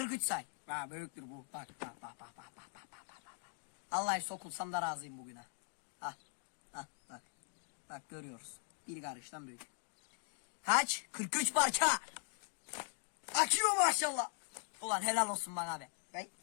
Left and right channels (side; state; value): right; silent; 51 dB below the other